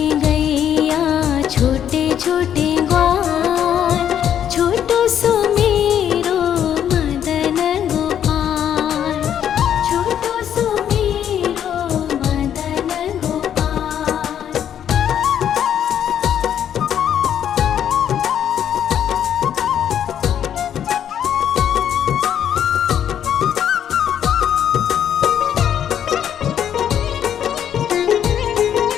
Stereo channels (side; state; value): right; quieter; 9.6 dB